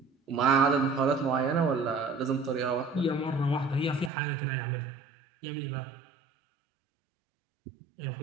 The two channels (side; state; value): left; drops out; at 4.1 s